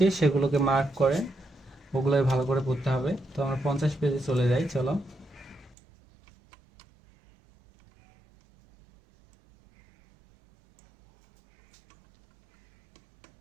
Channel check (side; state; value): left; drops out; at 5.8 s